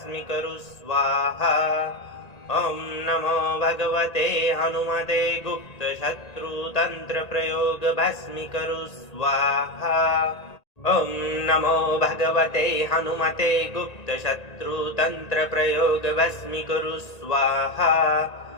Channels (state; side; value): late; right; 1.8 ms